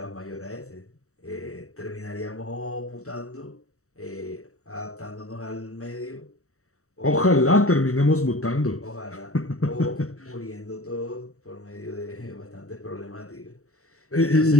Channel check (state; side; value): late; right; 0.64 ms